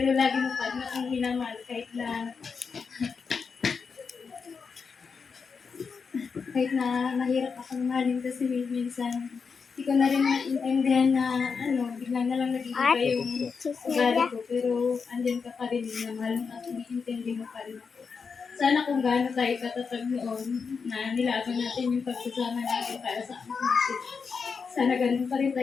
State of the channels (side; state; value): right; quieter; 5.5 dB